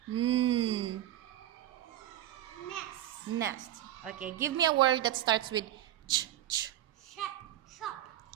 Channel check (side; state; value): left; quieter; 12.8 dB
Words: N. Nest. Nest. Okay. Give me a word that starts with ch. Shop.